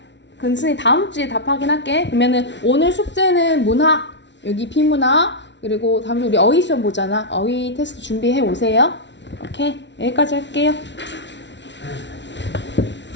그럼 선생님 다음 주에 답하긴 할게. 그러면은 오늘 숙제는 문학, 여기 비문학, 그리고 다음 주 우리 어휘 시험 보잖아. 어휘 테스트 준비해 오세요. 오케이. 여기까지 할게요.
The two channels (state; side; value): late; right; 0.51 ms